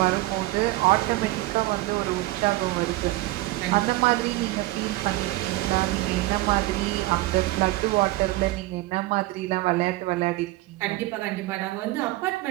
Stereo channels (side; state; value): left; quieter; 18.6 dB